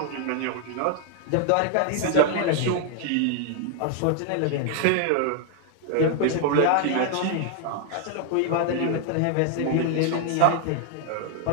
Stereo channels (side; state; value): both; different; correlation 0.00